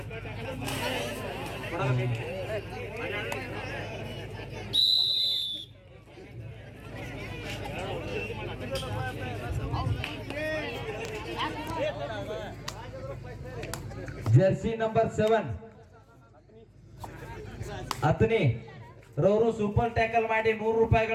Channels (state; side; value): identical; both; correlation 1.00